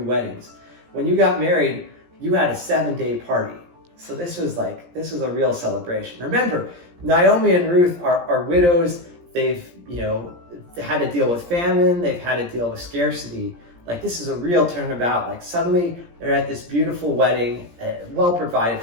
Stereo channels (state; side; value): late; left; 17 ms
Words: When you got married, you had a 7-day party. So this was a real celebration. Remember, Naomi and Ruth are widows. They've, you know, had to deal with famine. They've had to deal with scarcity. Like, this is a real turnabout. Like, suddenly they're at this beautiful wedding, well provided